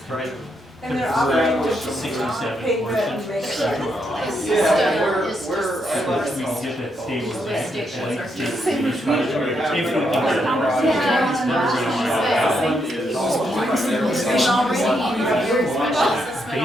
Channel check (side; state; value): both; normal; correlation 0.79